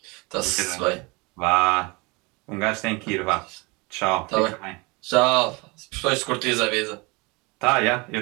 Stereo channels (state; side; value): quieter; left; 26.8 dB